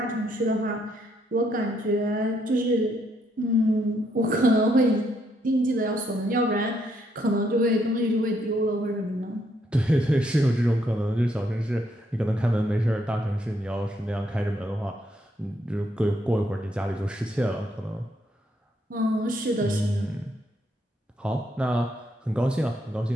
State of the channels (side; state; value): both; normal; correlation 0.74